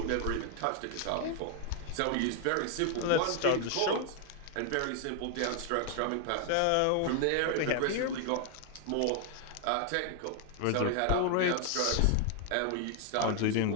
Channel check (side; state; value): both; different; correlation 0.00